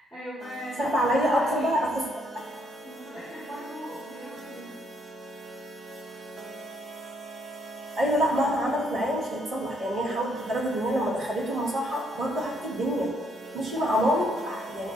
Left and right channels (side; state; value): both; normal; correlation 0.71